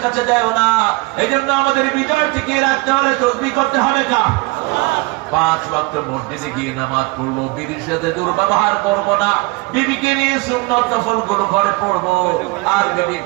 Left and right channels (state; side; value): quieter; left; 24.9 dB